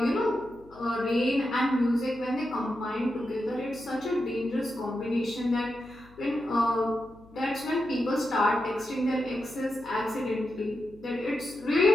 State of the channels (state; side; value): noise; left; hum, 24 dB below the sound